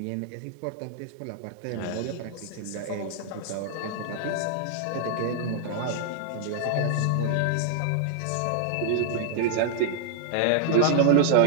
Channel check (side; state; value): both; different; correlation 0.00